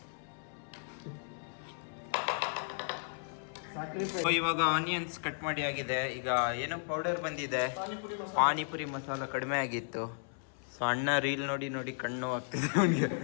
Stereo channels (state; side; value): silent; right; 55 dB below the other